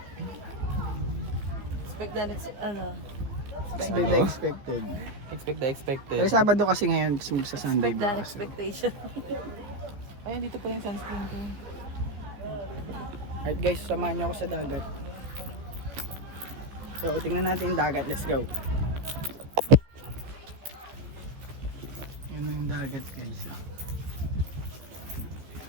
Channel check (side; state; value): left; late; 14 ms